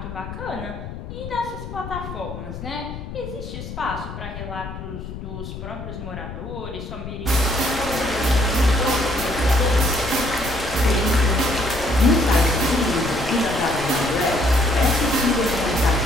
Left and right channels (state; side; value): noise; left; rumble, 10 dB below the sound